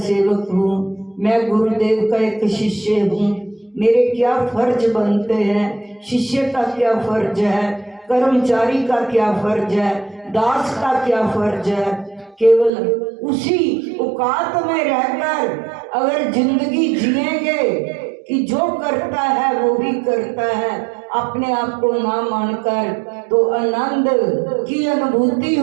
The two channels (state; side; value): drops out; left; at 12.7 s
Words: हूँ, मैं गुरुदेव का एक शिष्य हूँ। मेरे क्या फर्ज बनते हैं, शिष्य का क्या फर्ज है, कर्मचारी का क्या फर्ज है, दास का क्या फर्ज है। केवल उसी औकात में रहकर अगर जिंदगी जिएंगे कि जो करता है वो भी करता है, अपने आप को ना मानकर, तो आनंद की अनुभूति